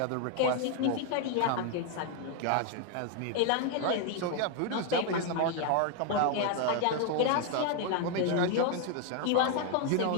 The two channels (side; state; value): both; different; correlation 0.00